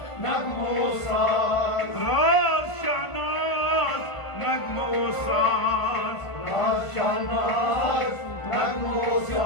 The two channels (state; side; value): late; right; 1.5 ms